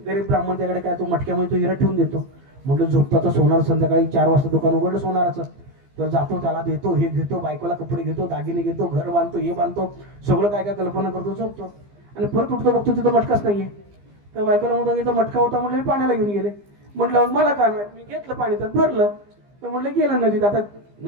गरीब ब्राह्मण त्याकडे काय, तो मटक्यामध्ये तो हिरा ठेवून देतो. म्हटलं झोपतो तर सोनार, संध्याकाळी 4 वाजता दुकान उघडलं सोनाराचं. तर जातो, त्याला देतो, हे घेतो, बायकोला कपडे घेतो, दागिने घेतो, घर बांधतो, हे बांधतो, सगळं काय काय कल्पना करतो, झोपतो. आणि परत उठतो, बघतो तिथं मटकाच नाहीये. तर बायकोला म्हणतो इथं मटका होता, म्हटलं मी पाण्याला घेऊन गेले. म्हटलं मला काय माहित, मी घेतलं पाणी तर भरलं. तर म्हटलं गेलं नदीत. आता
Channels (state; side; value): late; left; 15 ms